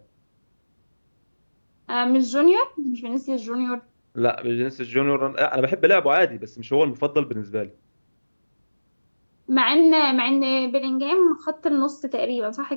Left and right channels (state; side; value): inverted; both; correlation -1.00